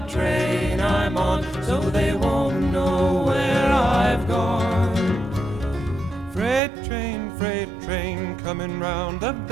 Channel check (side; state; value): left; drops out; at 6.6 s